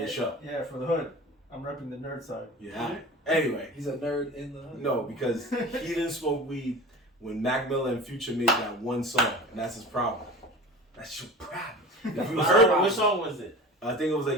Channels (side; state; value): both; normal; correlation 0.36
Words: show. Yeah, for the hood. I'm repping the nerd side. Yeah. Anyway. He's a nerd in the hood. No, because he didn't smoke weed when Mac Miller and Future made that one song, and that's his problem. That's your problem. If you heard which song was it? I think it was